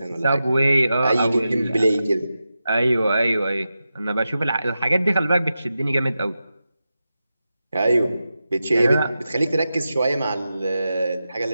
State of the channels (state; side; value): inverted; both; correlation -0.91